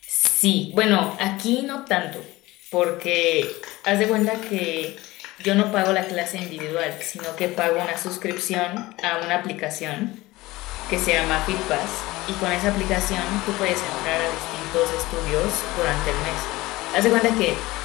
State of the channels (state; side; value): quieter; right; 19.4 dB